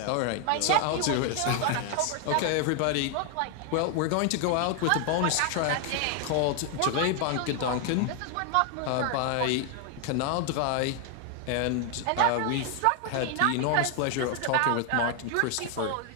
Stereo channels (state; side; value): different; both; correlation 0.01